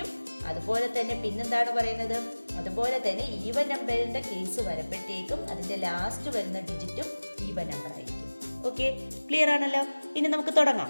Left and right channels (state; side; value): inverted; both; correlation -1.00